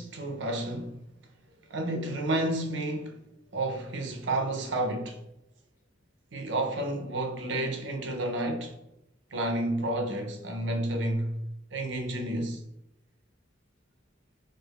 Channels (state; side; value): normal; both; correlation 0.29